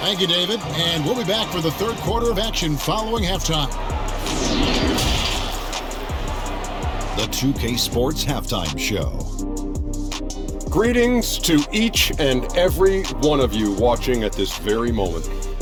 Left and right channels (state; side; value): identical; both; correlation 1.00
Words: Thank you, David. And we'll be back for the third quarter of action following halftime. The 2K Sports Halftime Show. Greetings to each and every one of you watching at this very moment.